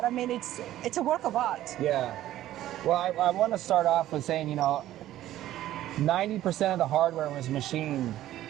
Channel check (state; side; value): quieter; left; 13.6 dB